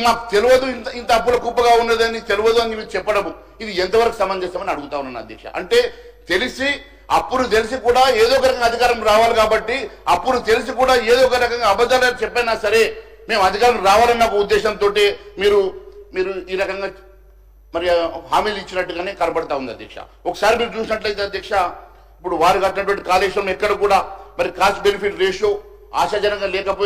మాకు తెలియదు ఇంత అప్పుల కుప్పగా ఉన్నదని తెలియదు అని మీరు చెప్పడము, ఇది ఎంతవరకు సమంజసమని అడుగుతా ఉన్నాను అధ్యక్ష. అంటే అప్పులు తెలిసి కూడా ఏదో ఒక రకంగా అధికారం రావాలి కాబట్టి, అప్పులు తెలిసి కూడా ఏదో ఒక రకంగా అబద్ధాలు చెప్పైనా సరే మేము అధికారం రావాలన్న ఒక ఉద్దేశంతో మీరు ఈ రకంగా మరి హామీలు ఇచ్చినట్టుగానే కనబడతా ఉంది అధ్యక్ష. ఒకసారి మీరు చూసినట్లయితే అధ్యక్ష, ఇప్పుడు వారు కట్టినటువంటి కాళేశ్వరం ఎక్కడ కూడా మరి కాస్ట్ బెనిఫిట్ రేషియో ఆశాజనంగా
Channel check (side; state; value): both; identical; correlation 1.00